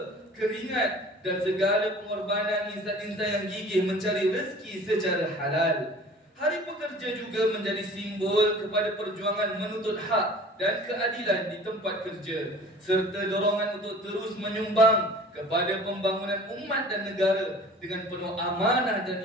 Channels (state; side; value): normal; both; correlation 0.46